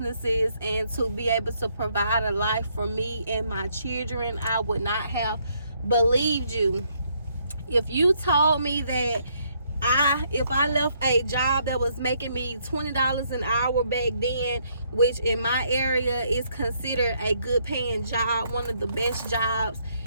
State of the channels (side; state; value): both; inverted; correlation -0.71